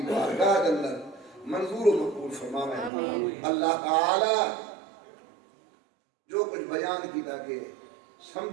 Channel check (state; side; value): drops out; left; at 2.9 s